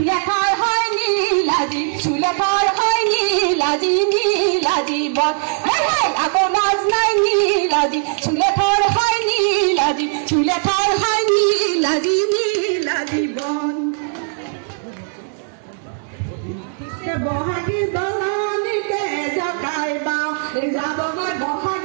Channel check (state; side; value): silent; left; digital silence